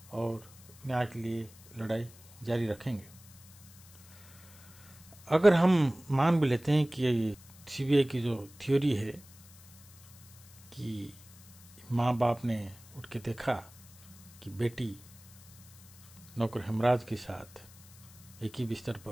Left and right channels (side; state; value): left; noise; hiss, 22 dB below the sound